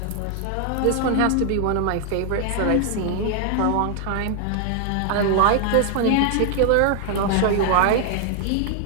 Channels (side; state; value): both; different; correlation 0.00